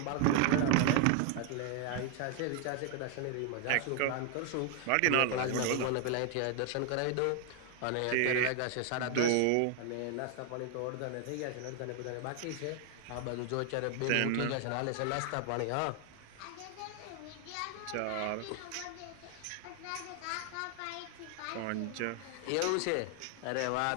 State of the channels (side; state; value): both; different; correlation 0.00